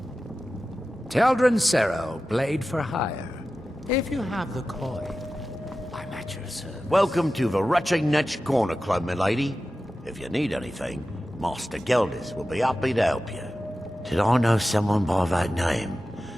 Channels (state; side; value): normal; both; correlation 0.94